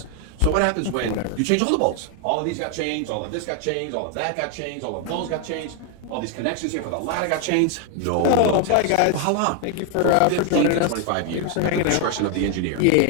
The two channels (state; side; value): different; both; correlation 0.01